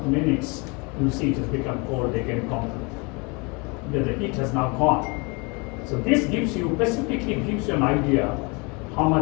minutes, you see it has become cold again completely. The heat has now gone. So this gives you, specifically gives you an idea how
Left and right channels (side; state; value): right; quieter; 29.5 dB